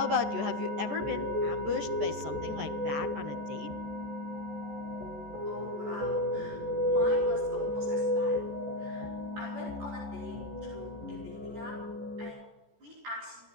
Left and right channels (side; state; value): left; late; 14 ms